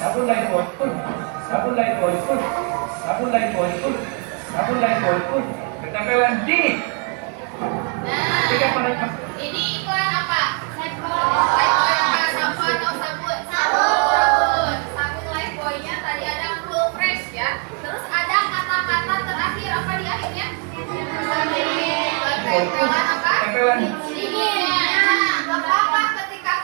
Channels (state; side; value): quieter; left; 37.8 dB